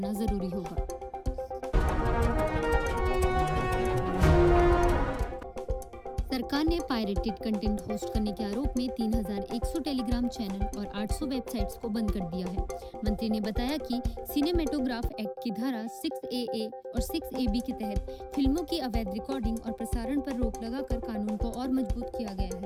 जरूरी होगा। सरकार ने पायरेटेड कंटेंट होस्ट करने के आरोप में 3100 टेलीग्राम चैनल और 800 वेबसाइट्स को बंद कर दिया है। मंत्री ने बताया कि सिनेमेटोग्राफ एक्ट की धारा 6AA और 6AB के तहत फिल्मों की अवैध रिकॉर्डिंग और प्रसारण पर रोक लगाकर कानून को और मजबूत किया गया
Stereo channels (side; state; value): both; identical; correlation 1.00